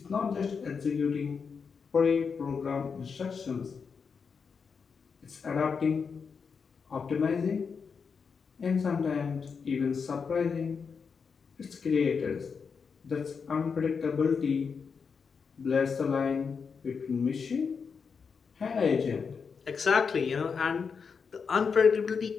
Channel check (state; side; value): quieter; right; 5.7 dB